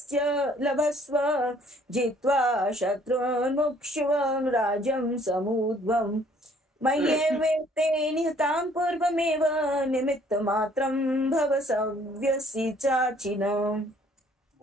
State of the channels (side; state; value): both; normal; correlation 0.60